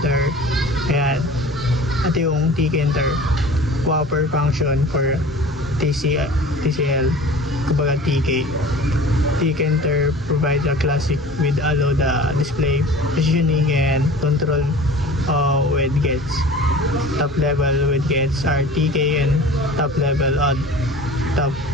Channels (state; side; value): normal; both; correlation 0.42